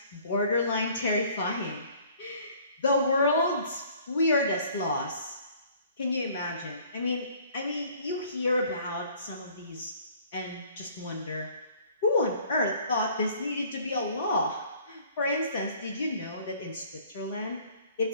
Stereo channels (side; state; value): both; inverted; correlation -0.55